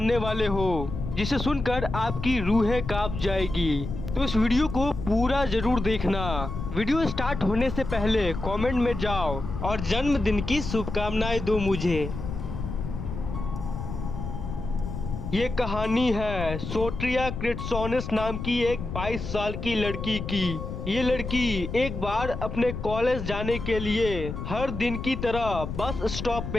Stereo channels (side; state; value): left; noise; rumble, 6 dB below the sound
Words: वाले हो जिसे सुनकर आपकी रूहें कांप जाएगी। तो इस वीडियो को पूरा जरूर देखना। वीडियो स्टार्ट होने से पहले कमेंट में जाओ और जन्मदिन की शुभकामनाएं दो मुझे। ये कहानी है सोट्रिया क्रिट्सोनिस नाम की एक 22 साल की लड़की की। ये लड़की एक बार अपने कॉलेज जाने के लिए हर दिन की तरह बस स्टॉप